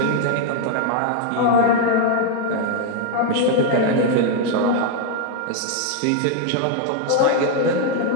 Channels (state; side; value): different; both; correlation 0.00